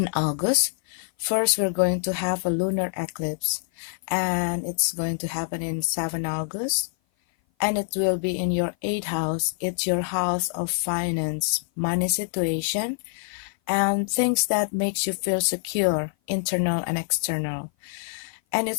August. First, we're going to have a lunar eclipse, and it's going to happen in 7 August, and it will be in your 8th house. It's your house of finance, money situation, and things that makes you feel secure, internal and external. And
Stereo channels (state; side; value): silent; right; 56 dB below the other